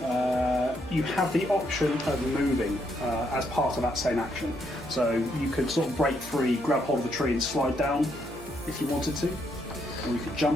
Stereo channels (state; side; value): normal; both; correlation 0.75